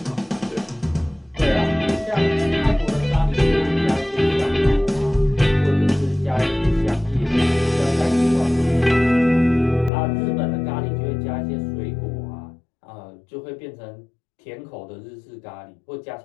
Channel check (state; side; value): drops out; right; at 9.9 s